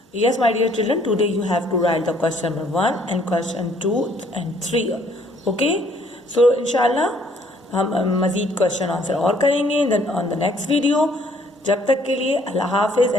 yes my dear children, today you have to write the question number 1 and question 2 and 3. Okay, so inshallah हम मज़ीद क्वेश्चन आंसर और करेंगे ऑन द नेक्स्ट वीडियो. जब तक के लिए अल्लाह हाफिज़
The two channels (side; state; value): both; normal; correlation 0.63